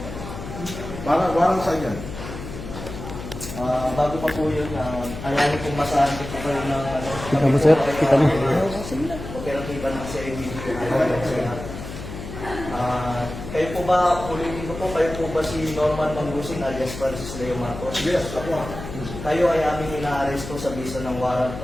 Parang saan yan? Bago pa po yun, ayanin kong masahan ko po kayo ng ano. Kita mo, sir? Kita mo? Operatiba ng CIDG. Kayo po ba, ulitin ko po, kayo po ba si Norman Mangusig alias Francis Leo Marcos? Yes, ako. Kayo ay aming ina-arresto sa bisa ng warrant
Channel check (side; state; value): left; noise; hum, 10 dB below the sound